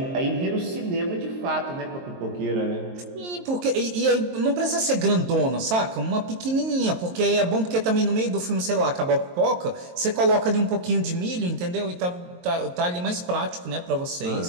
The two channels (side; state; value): left; late; 23 ms